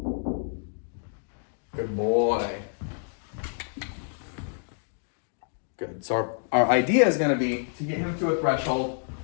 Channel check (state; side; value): silent; right; 59 dB below the other